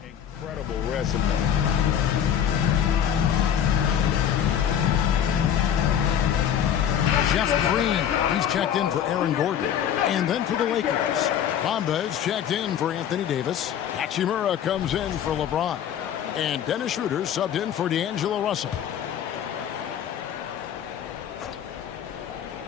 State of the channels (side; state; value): right; quieter; 9.3 dB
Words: incredible resume. Jeff Green, he's checked in for Aaron Gordon. And then for the Lakers, Bamba's checked in for Anthony Davis. Hachimura comes in for LeBron. And Dennis Schroeder subbed in for D'Angelo Russell.